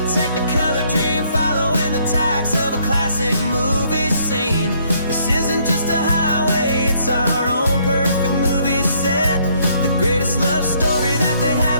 technicolor dream following the tacks of a classic movie scene. This isn't just a highway, it's our own perfect movie set, the greatest love story that they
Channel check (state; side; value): inverted; both; correlation -0.67